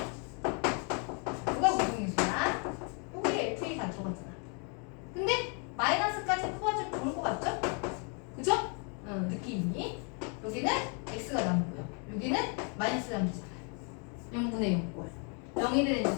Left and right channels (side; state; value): right; quieter; 38.1 dB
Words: 뭐가 공통인수야? 여기에 FA 다 들어갔잖아. 근데 마이너스까지 뽑아주면 좋을 것 같죠? 그죠? 느낌이. 여기는 X가 남고요. 여기는 마이너스 남잖아요. 0분의 0꼴. 0이 되는